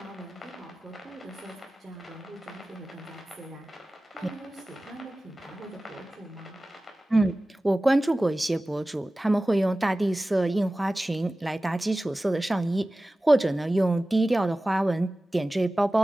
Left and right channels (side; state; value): both; normal; correlation 0.97